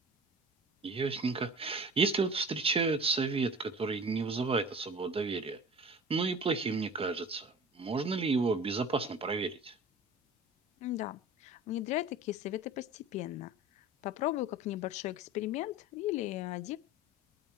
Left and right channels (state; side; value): normal; both; correlation 0.39